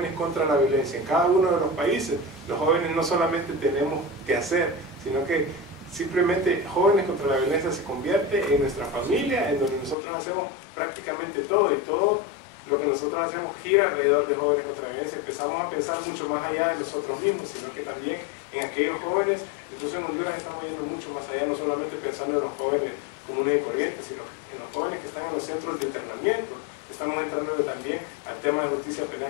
contra la Violencia en cada uno de los países, los jóvenes no solamente tenemos que hacer, sino que simplemente Jóvenes contra la Violencia se convierte en nuestra familia, en donde nosotros hacemos prácticamente todo, y todo lo que nosotros hacemos gira alrededor de Jóvenes contra la Violencia. Empezamos a pensar mucho más allá de nosotros mismos, sino que también en aquellos jóvenes. Incluso en Honduras estamos yendo mucho más allá, no solamente pensando en los jóvenes comunes y corrientes, sino que en los jóvenes que están en los centros de internamiento. Estamos entrando también al tema de justicia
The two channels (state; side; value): drops out; right; at 10.0 s